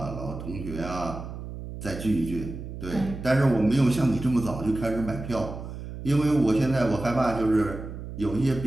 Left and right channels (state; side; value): noise; right; hum, 10 dB below the sound